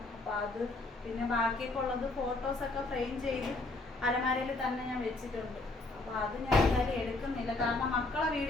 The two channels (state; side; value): quieter; right; 3.1 dB